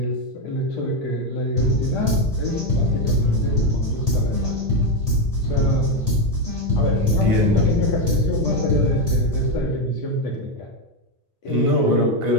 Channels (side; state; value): both; normal; correlation 0.08